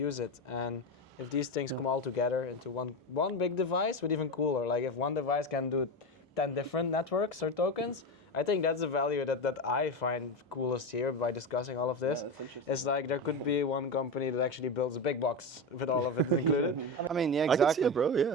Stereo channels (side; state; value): both; normal; correlation 0.18